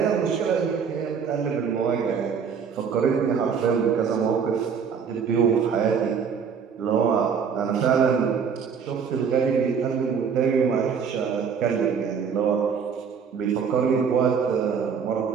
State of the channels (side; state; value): left; quieter; 6.5 dB